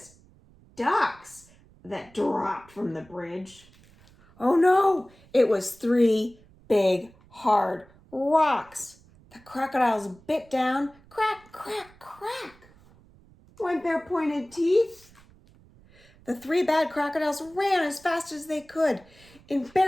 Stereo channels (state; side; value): noise; right; rumble, 27 dB below the sound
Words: ducks that dropped from the bridge. Oh no, it was 3 big, hard rocks. The crocodiles bit down, crack, crack, crack, went their pointed teeth. The 3 bad crocodiles ran as fast as they could. In